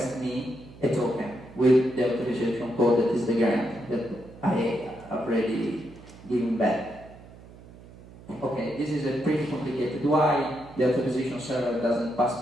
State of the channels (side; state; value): right; noise; hum, 20 dB below the sound